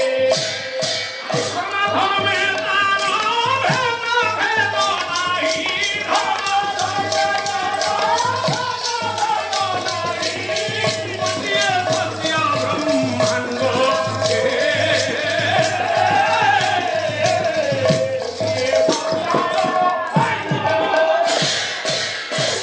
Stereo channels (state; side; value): identical; both; correlation 1.00